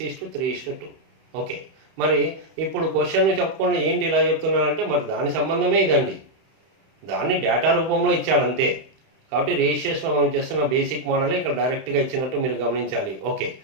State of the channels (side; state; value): left; late; 31 ms